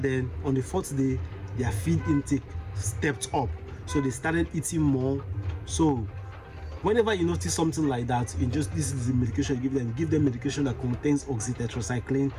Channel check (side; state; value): both; identical; correlation 1.00